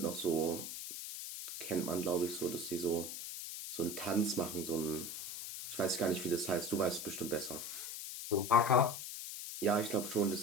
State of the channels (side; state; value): left; noise; hiss, 7 dB below the sound